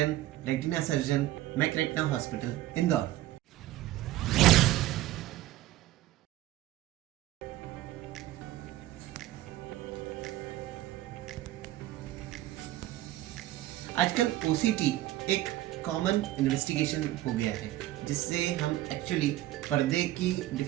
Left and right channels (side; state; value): left; quieter; 15.1 dB